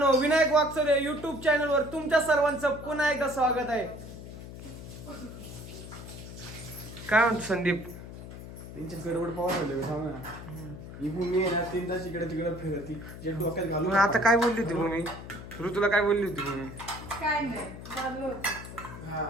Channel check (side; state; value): left; noise; hum, 12 dB below the sound